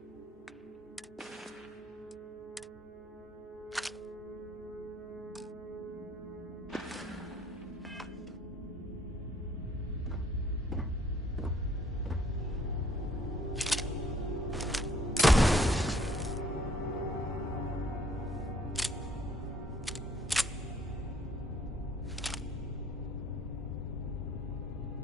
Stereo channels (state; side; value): normal; both; correlation 0.61